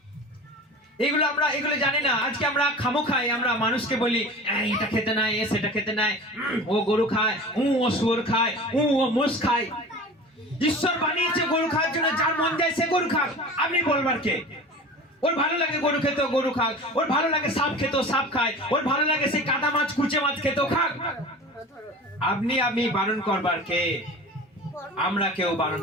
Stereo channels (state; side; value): normal; both; correlation 0.37